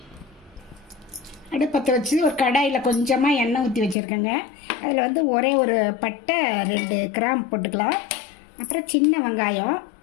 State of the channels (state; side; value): drops out; right; at 4.0 s